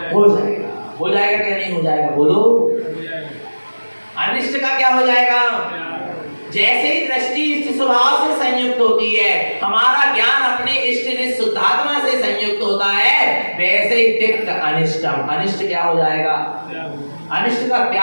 हो जाएगा। हो जाएगा क्या नहीं हो जाएगा? बोलो। अनिष्ट का क्या हो जाएगा? जैसे ही दृष्टि इष्ट स्वभाव से संयुक्त होती है, हमारा ज्ञान अपने इष्ट निष्ठ शुद्धात्मा से संयुक्त होता है, वैसे ही तिक्त अनिष्टम, अनिष्ट क्या हो जाएगा? अनिष्ट का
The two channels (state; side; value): inverted; both; correlation -1.00